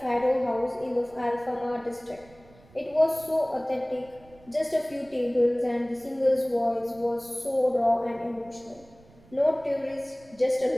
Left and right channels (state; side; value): noise; right; rumble, 26 dB below the sound